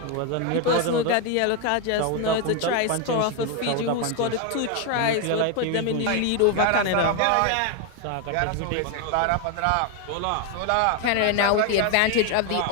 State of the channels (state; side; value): different; both; correlation 0.01